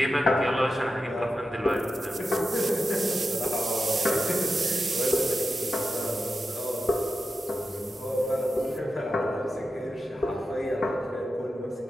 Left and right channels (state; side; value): normal; both; correlation 0.90